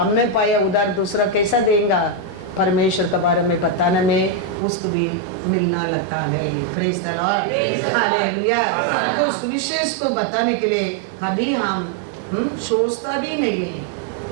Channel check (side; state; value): left; drops out; at 4.5 s